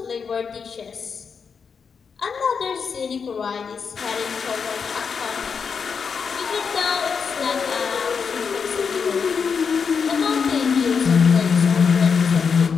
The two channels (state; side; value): quieter; right; 6.0 dB